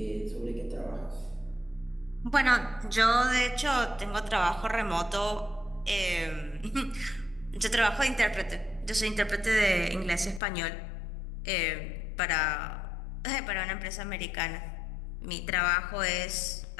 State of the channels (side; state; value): right; drops out; at 10.4 s